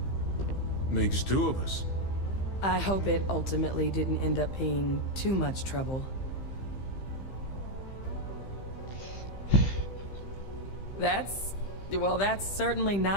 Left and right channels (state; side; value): late; right; 15 ms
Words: Makes two of us. I hope it ultimately didn't end up being too much trouble. That's certainly